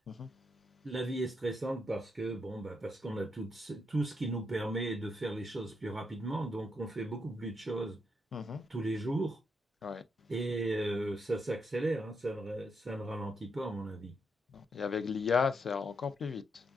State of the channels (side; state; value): both; normal; correlation 0.80